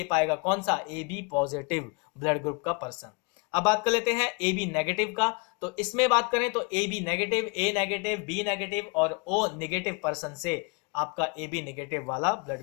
पाएगा कौन सा, A B positive blood group का पर्सन। अब बात कर लेते हैं ए बी नेगेटिव का, तो इसमें बात करें तो A B negative, A negative, B negative और ओ नेगेटिव पर्सन से आपका ए बी नेगेटिव वाला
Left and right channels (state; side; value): quieter; right; 31.9 dB